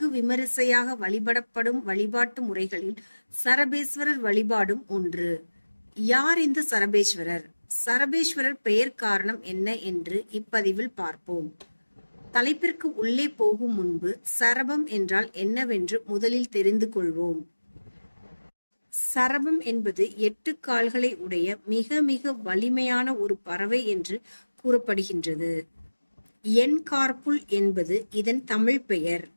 விமரிசையாக வழிபடப்படும் வழிபாட்டு முறைகளில் சரபேஸ்வரர் வழிபாடும் ஒன்று. யார் இந்த சரபேஸ்வரர்? சரபேஸ்வரர் பெயர் காரணம் என்ன என்று இப்பதிவில் பார்ப்போம். தலைப்பிற்கு உள்ளே போகும் முன்பு சரபம் என்றால் என்னவென்று முதலில் தெரிந்து கொள்வோம். சரபம் என்பது 8 கால்களை உடைய மிக மிக வலிமையான ஒரு பறவை என்று கூறப்படுகின்றது. என்கார்புல் என்பது இதன் தமிழ் பெயர்.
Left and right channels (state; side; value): inverted; both; correlation -1.00